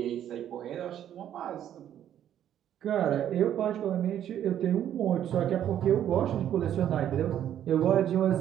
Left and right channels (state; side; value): quieter; left; 10.6 dB